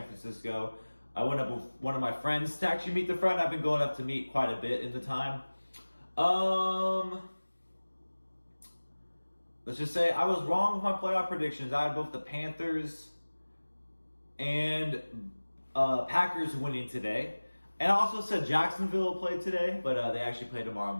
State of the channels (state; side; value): inverted; both; correlation -1.00